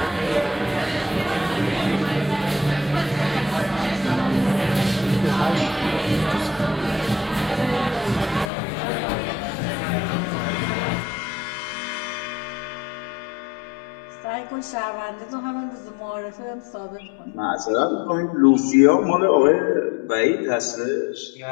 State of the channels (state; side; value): drops out; right; at 8.5 s